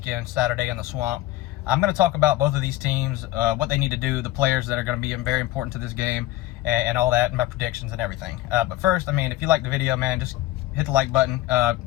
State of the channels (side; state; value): right; quieter; 15.8 dB